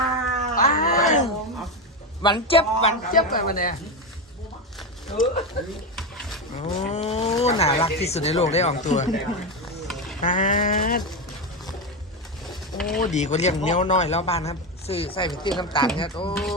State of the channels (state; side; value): normal; both; correlation 0.13